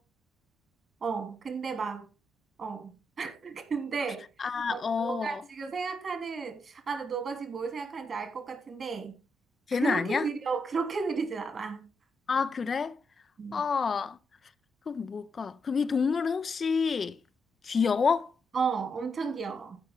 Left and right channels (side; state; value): both; normal; correlation 0.82